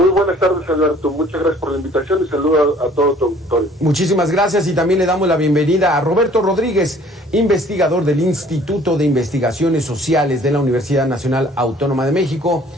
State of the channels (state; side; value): normal; both; correlation 0.55